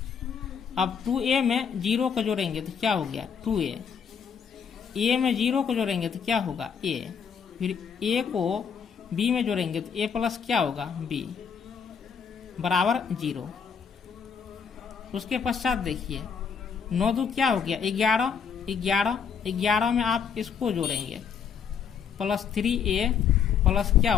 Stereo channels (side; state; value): right; quieter; 6.9 dB